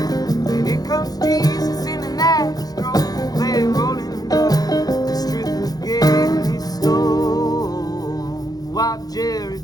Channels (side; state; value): right; late; 0.19 ms